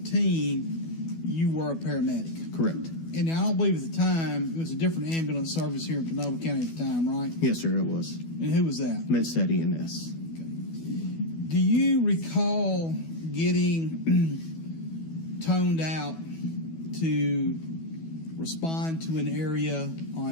you were a paramedic. Correct. And I don't believe at the time, it was a different ambulance service here in Panola County at the time, right? Yes, sir, it was. And who was that? MedStat EMS. Okay. Do you recall getting toned out to respond to an area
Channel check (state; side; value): late; right; 12 ms